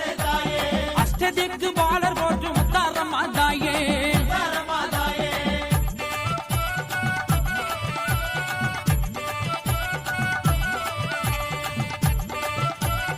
அஷ்டதிக்கு பாலர் போற்று முத்தாரமாதாயே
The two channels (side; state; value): both; identical; correlation 1.00